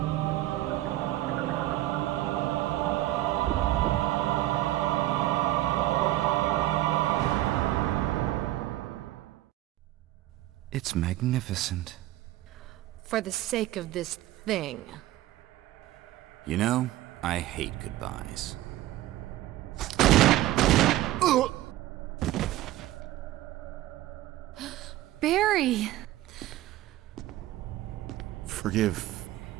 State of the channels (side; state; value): left; quieter; 15.3 dB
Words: It's magnificent. For the sake of this thing. You know, I hate goodbyes. Barry! Forgive